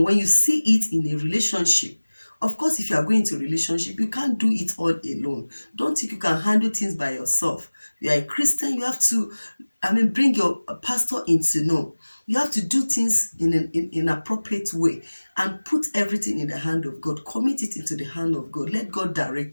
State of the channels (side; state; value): both; inverted; correlation -1.00